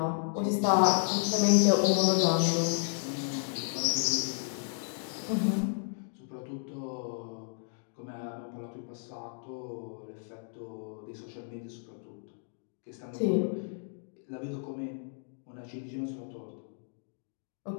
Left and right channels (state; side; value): silent; right; 56 dB below the other